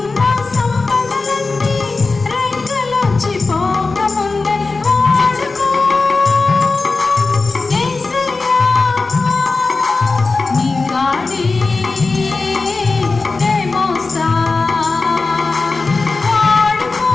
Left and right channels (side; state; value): right; quieter; 3.8 dB